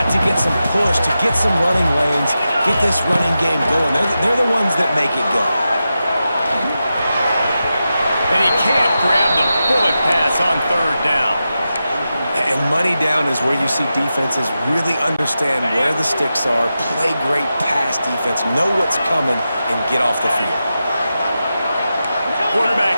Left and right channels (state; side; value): inverted; both; correlation -0.91